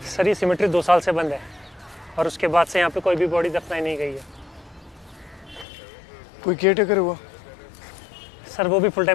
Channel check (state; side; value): drops out; right; at 5.7 s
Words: सर ये सिमेट्री 2 साल से बंद है और उसके बाद से यहाँ पे कोई भी बॉडी दफनाई नहीं गई है। कोई केयर टेकर हुआ? सर वो भी फुल